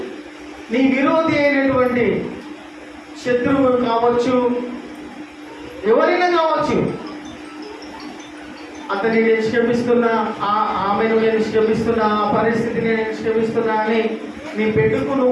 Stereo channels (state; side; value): identical; both; correlation 1.00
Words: నీ విరోధి అయినటువంటి శత్రువు కావచ్చు, ఎవరైనా కావచ్చు, అతన్ని నేను క్షమిస్తున్నా, ఆమెను నేను క్షమిస్తున్నా, ఆ పరిస్థితిని నేను క్షమిస్తున్నా అని నీ బెడ్డుకు